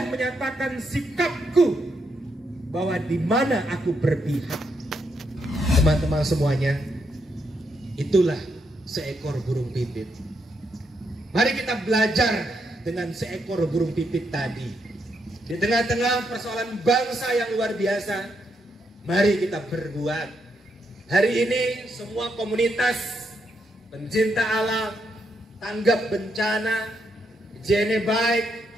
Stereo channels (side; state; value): both; normal; correlation 0.79